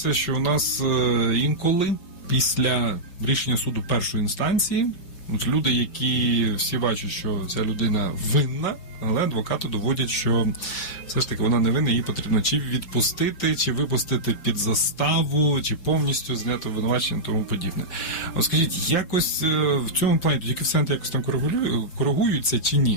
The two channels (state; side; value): late; right; 5.6 ms